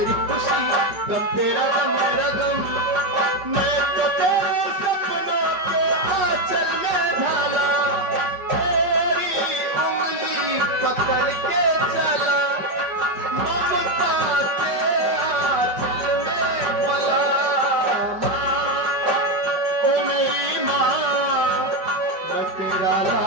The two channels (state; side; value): late; left; 5.2 ms